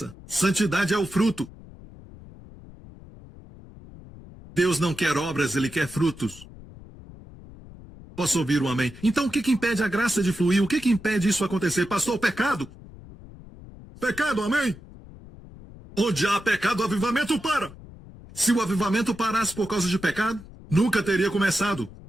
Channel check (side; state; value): left; noise; rumble, 18 dB below the sound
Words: santidade é o fruto. Deus não quer obras, Ele quer frutos. Posso ouvir um amém? Então o que impede a graça de fluir? O que impede isso acontecer? Pastor, pecado? Pecado, amém? Onde há pecado, o avivamento para. Se o avivamento parasse por causa de pecado, nunca teria começado.